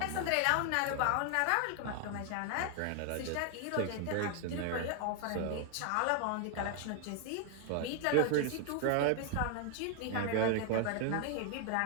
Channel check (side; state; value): both; different; correlation 0.00